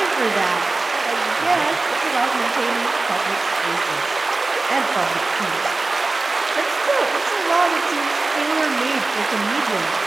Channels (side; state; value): left; quieter; 3.4 dB